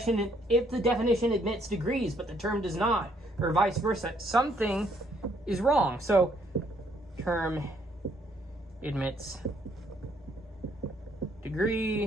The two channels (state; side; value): normal; both; correlation 0.67